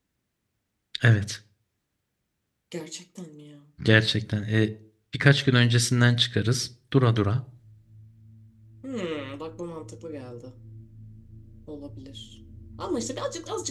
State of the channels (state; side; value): identical; both; correlation 1.00